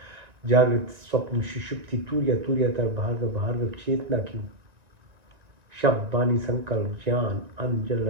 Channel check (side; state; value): left; late; 1.9 ms